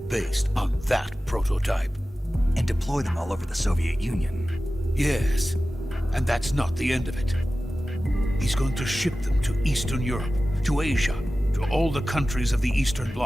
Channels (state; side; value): normal; both; correlation 0.95